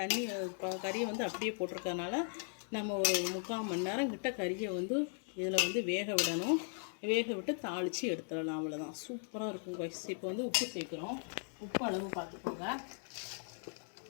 தண்ணி கறியை வந்து அப்படியே போட்டிருக்கறனால நம்ம ஒரு 3/4 மணி நேரம் கிட்ட கறியை வந்து இதில் வந்து வேக விடணும். வேக விட்டு தாளித்து எடுத்துடலாம். அவ்வளோதான், சூப்பராக இருக்கும் காய்ஸ். இப்போ வந்து உப்பு சேர்க்குறோம். உப்பு அளவு பார்த்துக்கோங்க.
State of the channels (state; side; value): silent; right; 53 dB below the other